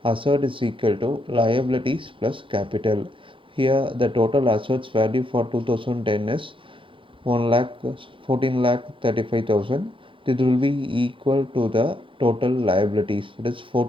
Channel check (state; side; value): late; left; 0.25 ms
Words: asset is equal to liabilities plus capital. Here the total assets value for 2010 is 1 lakh 14 lakh 35,000. It will be equal to the total liabilities, that is